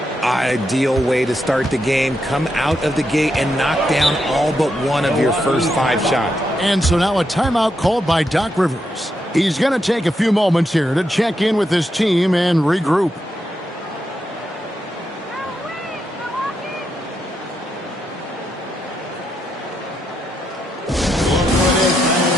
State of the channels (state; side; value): normal; both; correlation 0.82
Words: Ideal way to start the game. Come out of the gate and knock down all but one of your first 5 shots. And so now a timeout called by Doc Rivers. He's going to take a few moments here to check in with his team and regroup.